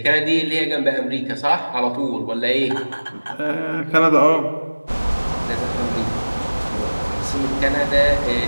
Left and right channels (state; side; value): inverted; both; correlation -1.00